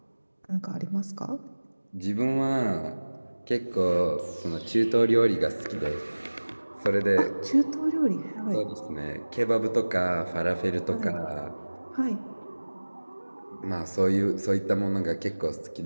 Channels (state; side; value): inverted; both; correlation -1.00